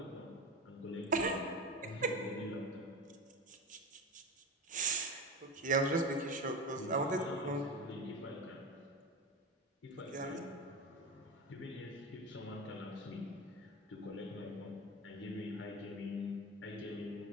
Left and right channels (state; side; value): normal; both; correlation 0.24